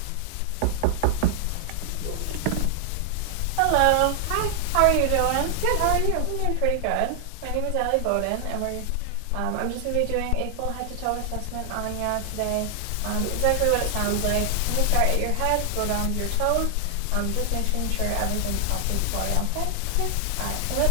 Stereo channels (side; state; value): both; different; correlation 0.00